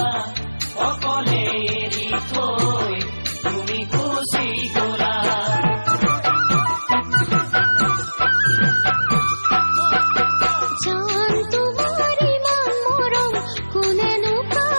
অকলে এৰি থৈ তুমি গুচি গলা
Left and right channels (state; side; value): inverted; both; correlation -1.00